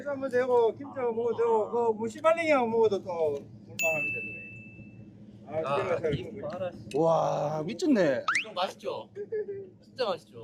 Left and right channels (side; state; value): both; identical; correlation 1.00